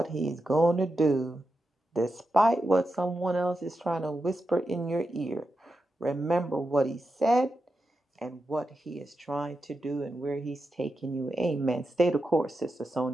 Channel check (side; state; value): both; normal; correlation 0.88